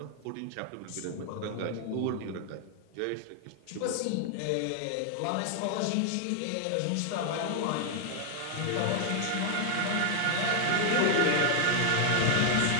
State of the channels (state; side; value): different; both; correlation 0.00